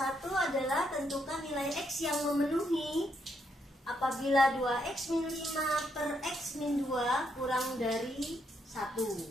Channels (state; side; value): normal; both; correlation 0.77